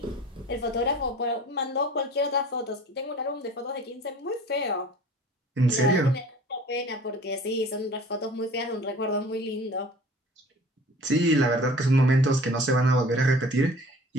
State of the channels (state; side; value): normal; both; correlation 0.46